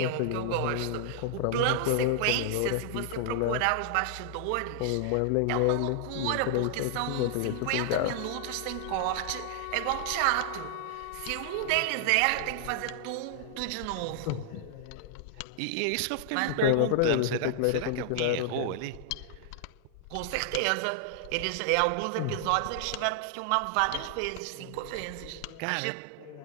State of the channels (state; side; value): different; both; correlation -0.01